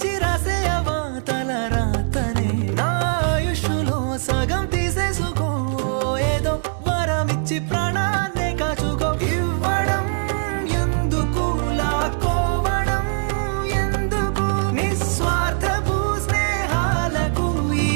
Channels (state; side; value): silent; left; digital silence